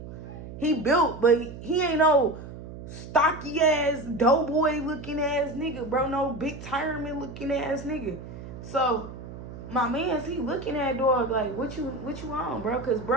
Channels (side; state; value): right; noise; hum, 12 dB below the sound